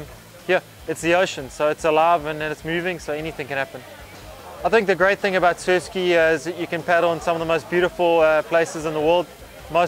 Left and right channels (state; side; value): identical; both; correlation 1.00